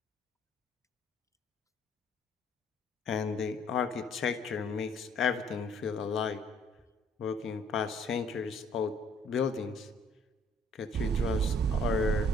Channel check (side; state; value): both; normal; correlation 0.60